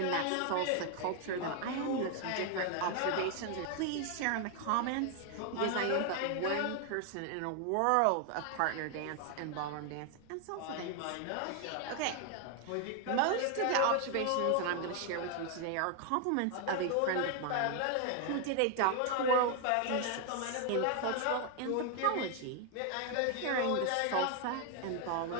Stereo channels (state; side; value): different; both; correlation 0.00